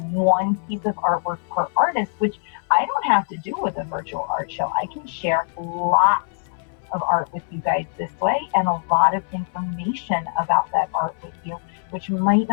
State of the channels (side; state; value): right; silent; 61 dB below the other